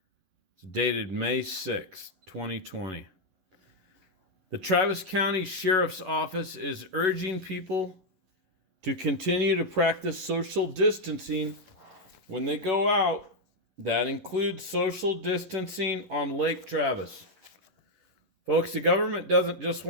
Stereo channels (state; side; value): late; left; 11 ms